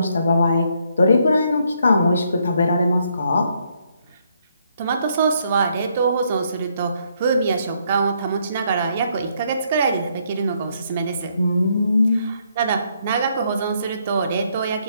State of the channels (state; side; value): inverted; both; correlation -0.72